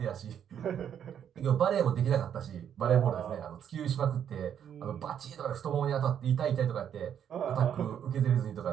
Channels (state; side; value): quieter; left; 9.0 dB